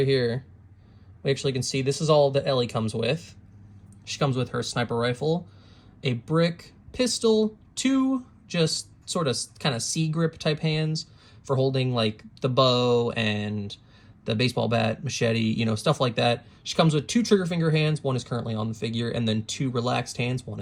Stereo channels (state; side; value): identical; both; correlation 1.00